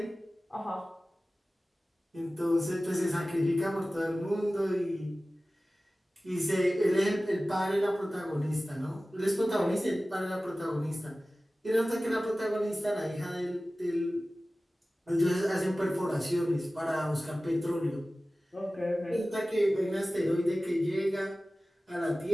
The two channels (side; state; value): both; normal; correlation 0.97